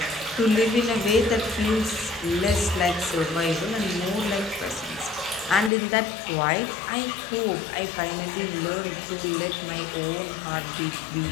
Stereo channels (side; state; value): right; drops out; at 5.7 s